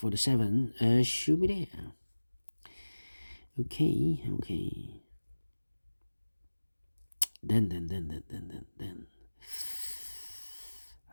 the 7 should be there. Okay. Then.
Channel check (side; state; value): both; inverted; correlation -1.00